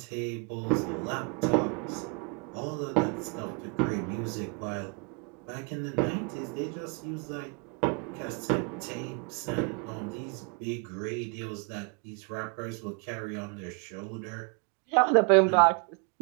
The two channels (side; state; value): left; quieter; 33.8 dB